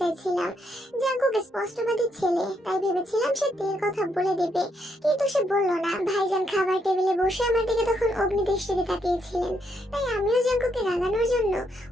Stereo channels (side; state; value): both; normal; correlation 0.76